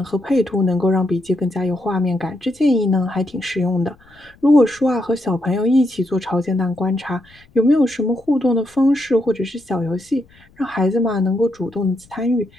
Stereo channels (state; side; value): noise; left; rumble, 29 dB below the sound